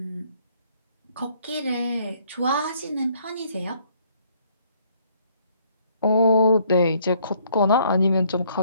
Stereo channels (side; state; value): both; inverted; correlation -0.64